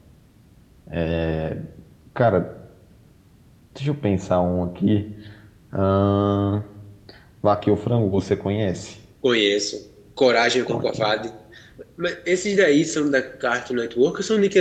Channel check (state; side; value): identical; both; correlation 1.00